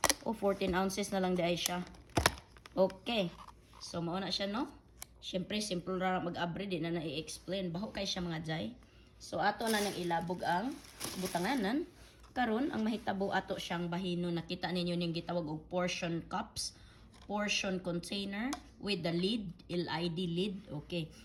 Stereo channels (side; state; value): both; identical; correlation 1.00